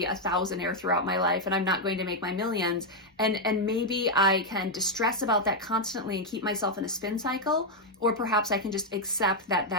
a thousandaire throughout my life, and I'm not going to make my millions. And maybe I can distress about that constantly and keep myself in a spin cycle, or perhaps I can just accept that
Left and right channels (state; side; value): normal; both; correlation 0.00